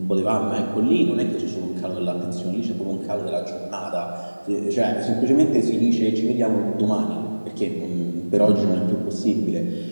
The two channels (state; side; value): inverted; both; correlation -1.00